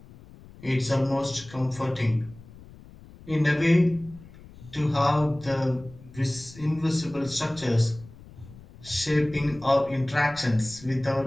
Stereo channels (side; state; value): left; noise; rumble, 20 dB below the sound